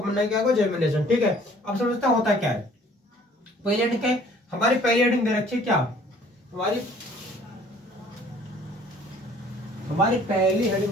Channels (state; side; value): normal; both; correlation 0.55